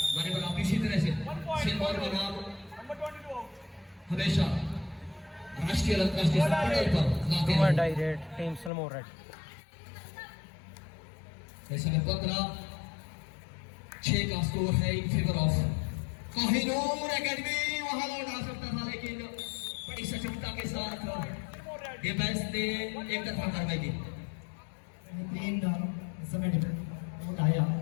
माने बना आप इसी तरह से सिरमौर का नाम हमेशा राष्ट्रीय और अंतर्राष्ट्रीय स्तर पर लाते हैं। Direct team Sirmaur red. ऐसे में 15-6 का स्कोर है इन फेवर ऑफ कोहिनूर एकेडमी। वहां लौट आ सकता था, लेकिन बड़ी सचेतता के साथ डिफेंस ने एक तरफा कार्रवाई की। समय डिफेंस आया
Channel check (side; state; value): right; drops out; at 8.7 s